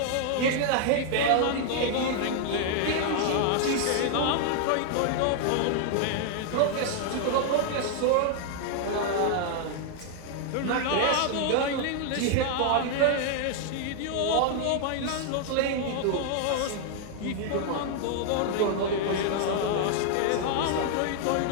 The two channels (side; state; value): both; different; correlation 0.00